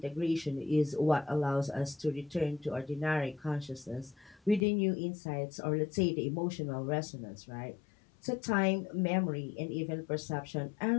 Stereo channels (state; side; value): drops out; right; at 4.7 s